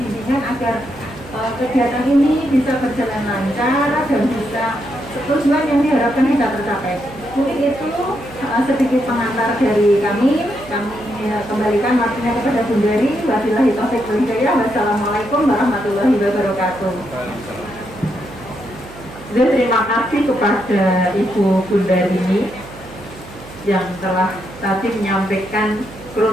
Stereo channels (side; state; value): right; noise; hum, 18 dB below the sound